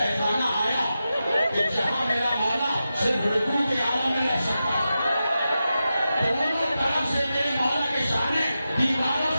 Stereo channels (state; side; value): inverted; both; correlation -0.91